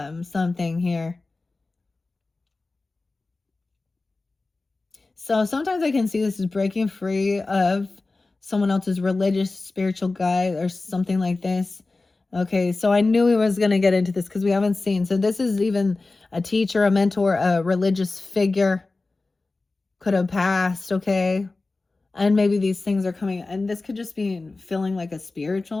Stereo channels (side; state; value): right; quieter; 3.5 dB